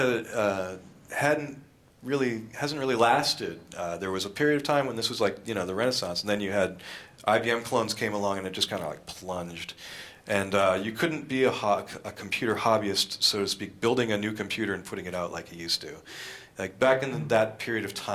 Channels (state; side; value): identical; both; correlation 1.00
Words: hasn't really lasted. There was a period of time when this was like the Renaissance, and then you had IBM clones came along, and it just kind of like plunged. And you couldn't be a computer hobbyist, so to speak, building a new computer and putting it out like you used to. Like back in that period of